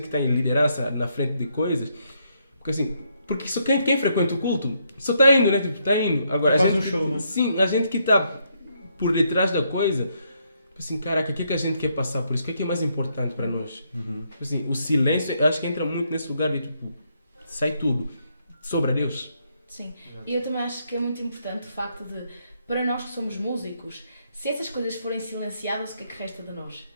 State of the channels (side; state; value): both; inverted; correlation -0.75